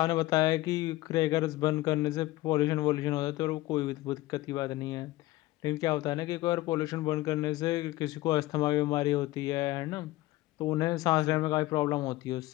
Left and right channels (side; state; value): right; quieter; 17.9 dB